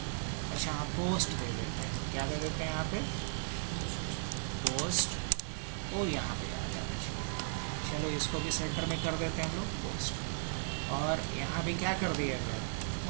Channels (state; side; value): silent; left; digital silence